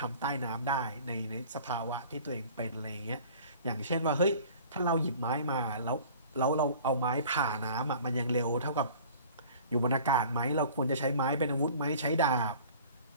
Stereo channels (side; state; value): both; inverted; correlation -0.47